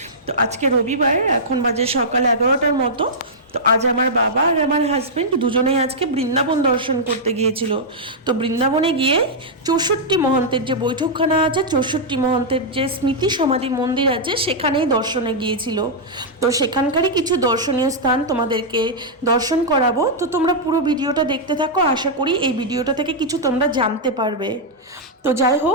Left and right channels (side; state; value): both; normal; correlation -0.08